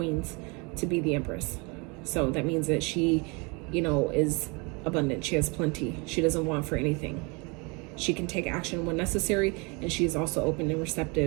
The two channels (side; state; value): left; quieter; 29.9 dB